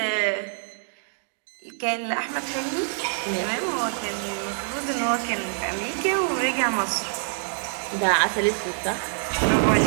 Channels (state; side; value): silent; left; 61 dB below the other